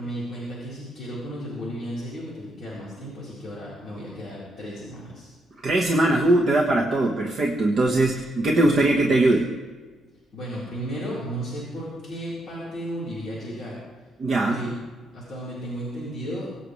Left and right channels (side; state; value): both; normal; correlation 0.78